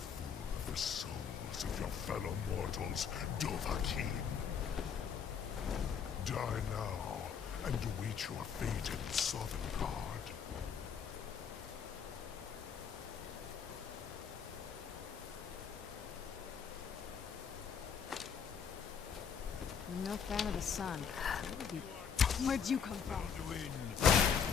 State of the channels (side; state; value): right; quieter; 7.0 dB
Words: of the souls of your fellow mortals, Dovahkiin. Die now, and await your fate in Sovngarde. I'm no fan of the sun. Where'd you come from? Alduin!